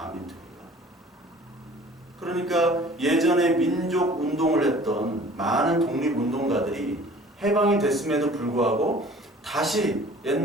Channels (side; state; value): both; normal; correlation 0.48